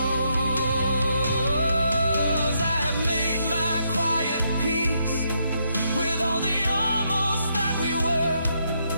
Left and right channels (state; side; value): inverted; both; correlation -0.77